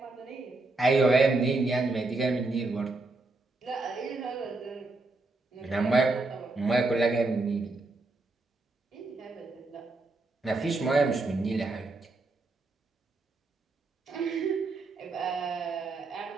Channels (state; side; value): quieter; left; 3.3 dB